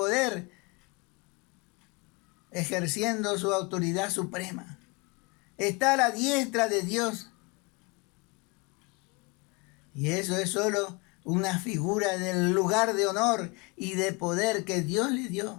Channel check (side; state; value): right; quieter; 27.6 dB